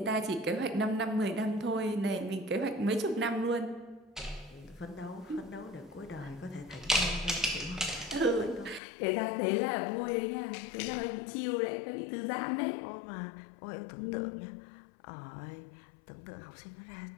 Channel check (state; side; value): drops out; right; at 8.8 s